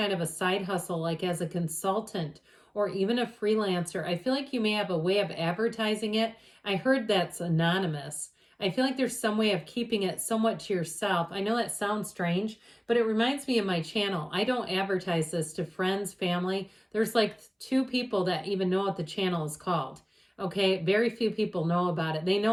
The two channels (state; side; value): identical; both; correlation 1.00